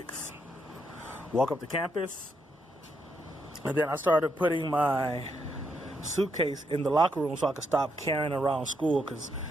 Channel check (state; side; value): normal; both; correlation 0.78